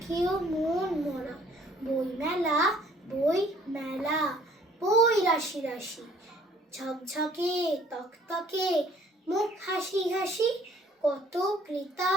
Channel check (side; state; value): both; normal; correlation 0.58